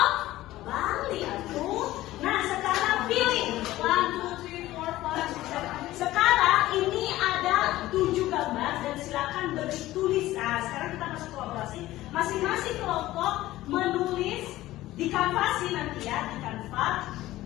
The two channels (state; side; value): quieter; right; 16.1 dB